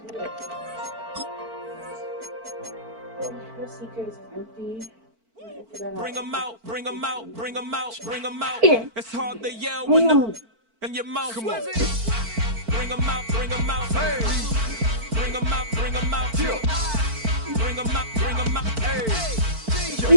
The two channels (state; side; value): late; left; 4.5 ms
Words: Bring them out, bring them out, bring them out, bring them out. It's hard to yell when the in your mouth. Come on. Bring them out, bring them out. Hey. Bring them out, bring them out. Bring them out, bring them out. Hey.